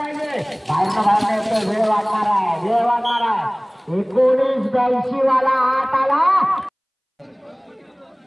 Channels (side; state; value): both; identical; correlation 1.00